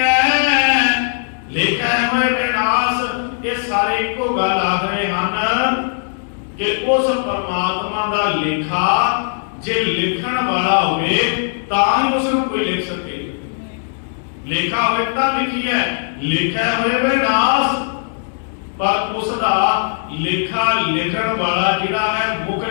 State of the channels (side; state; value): right; silent; digital silence